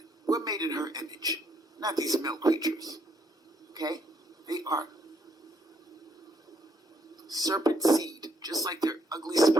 We're made in her image. Not these male creatures. Okay? They are serpent seed, just like their ugly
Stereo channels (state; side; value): normal; both; correlation 0.70